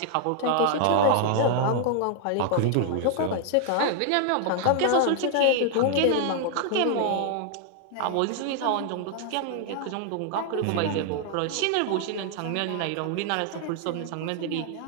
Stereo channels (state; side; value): different; both; correlation 0.00